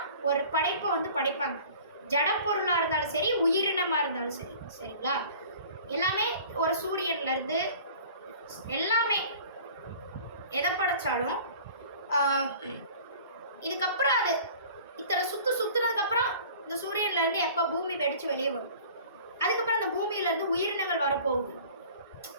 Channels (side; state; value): both; inverted; correlation -0.46